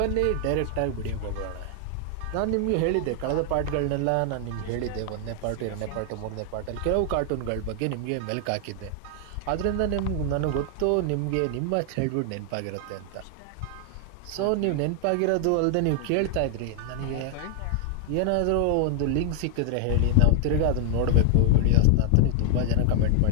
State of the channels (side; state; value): both; different; correlation 0.00